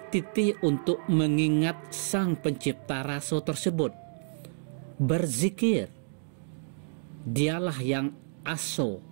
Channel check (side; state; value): left; silent; digital silence